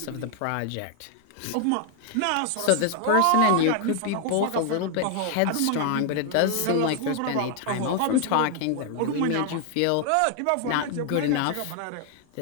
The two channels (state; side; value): different; both; correlation 0.00